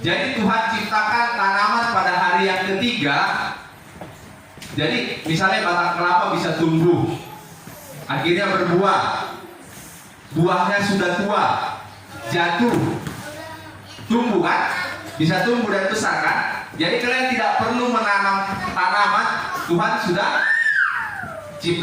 Jadi Tuhan ciptakan tanaman pada hari yang ketiga. Jadi misalnya batang kelapa bisa tumbuh, akhirnya berbuah, buahnya sudah tua, jatuh, tumbuh, kan? Bisa tumbuh dan besar, kan? Jadi kalian tidak perlu menanam tanaman, Tuhan sudah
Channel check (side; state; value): both; identical; correlation 1.00